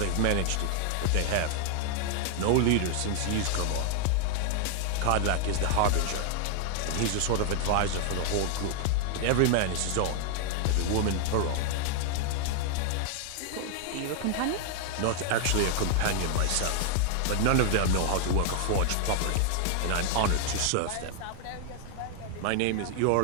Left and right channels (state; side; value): different; both; correlation 0.00